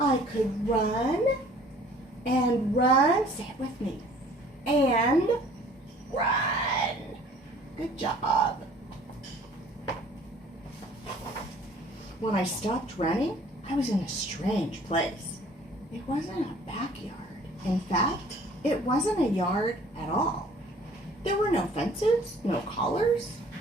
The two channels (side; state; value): both; normal; correlation 0.53